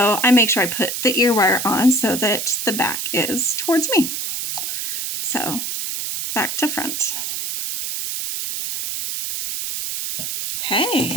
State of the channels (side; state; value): right; noise; hiss, 3 dB below the sound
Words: I make sure I put the ear wire on so that the back is towards me. So back to front.